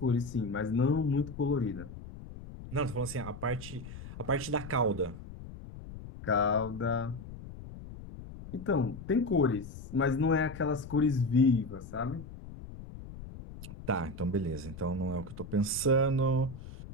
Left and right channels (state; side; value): noise; left; rumble, 13 dB below the sound